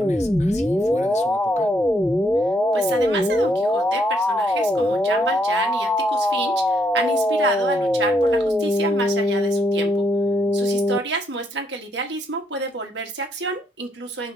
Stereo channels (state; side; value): normal; both; correlation 0.74